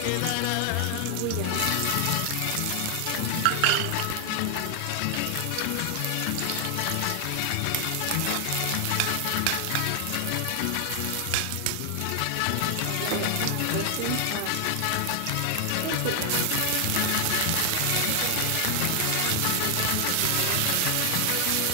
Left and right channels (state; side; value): different; both; correlation 0.00